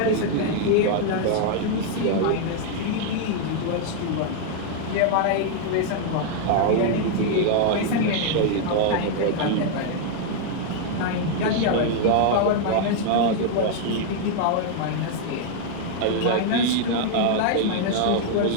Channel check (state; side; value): different; both; correlation 0.00